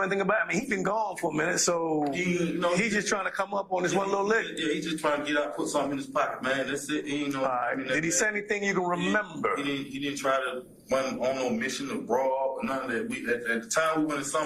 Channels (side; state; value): both; identical; correlation 1.00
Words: anything about it? I mean, he's been gone for a minute, so he's just trying to come up on this one little lick. Yeah, he's just trying to get out, put something in his pocket, man. That's it. He ain't know. All right. Did he say anything you can remember? He didn't try to run on no mission to rob or none of that. At the time we went in